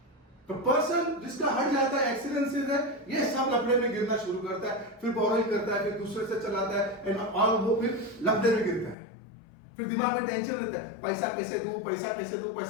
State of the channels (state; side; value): drops out; right; at 9.0 s